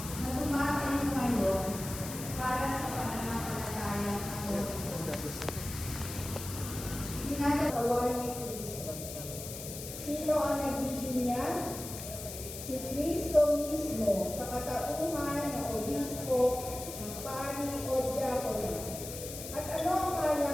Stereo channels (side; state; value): left; noise; hiss, 9 dB below the sound